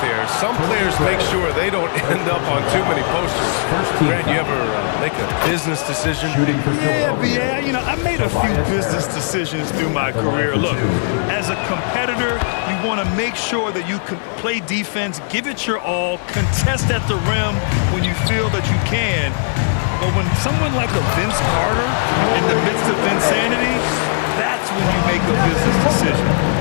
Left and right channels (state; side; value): silent; right; 67 dB below the other